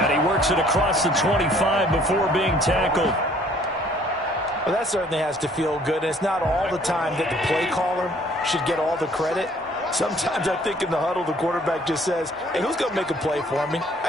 he works it across the 25 before being tackled. Well, that certainly has to feel good. And it's not all the time that the play caller should get all the credit. Sometimes I think in the huddle, the quarterback just says, hey, who's going to make a play for me?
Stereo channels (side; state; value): both; normal; correlation 0.59